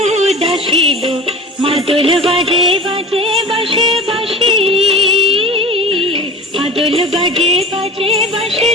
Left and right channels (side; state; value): both; normal; correlation 0.35